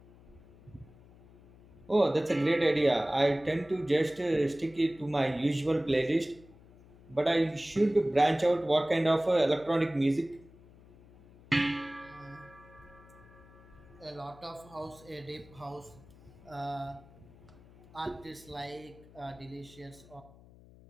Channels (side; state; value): left; noise; hum, 23 dB below the sound